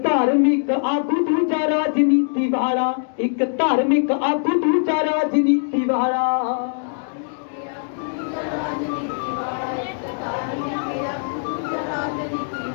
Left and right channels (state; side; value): silent; right; digital silence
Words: धार्मिक आगू दूजा राजनीति वाला। एक धार्मिक आगू दूजा राजनीति वाला।